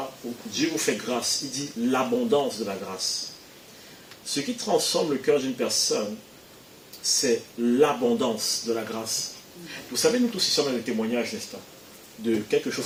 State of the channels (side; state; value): both; identical; correlation 1.00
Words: Dieu vous fait grâce, il dit l'abondance de la grâce. Ce qui transforme le cœur d'une personne, c'est l'abondance de la grâce. Vous savez, nous tous ici, on a des témoignages, n'est-ce pas, de quelque chose